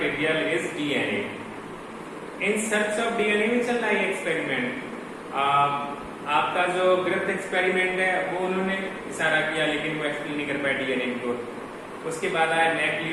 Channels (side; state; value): both; identical; correlation 1.00